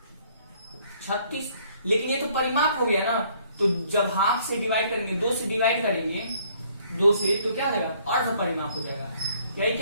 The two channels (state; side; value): inverted; both; correlation -0.62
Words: 36। लेकिन ये तो परिमाप हो गया ना, तो जब हाफ से डिवाइड करेंगे 2 से डिवाइड करेंगे 2 से तो क्या हो जाएगा अर्ध परिमाप हो जाएगा। यही